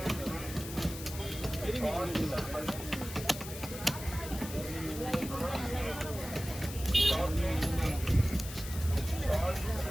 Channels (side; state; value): left; noise; hiss, 11 dB below the sound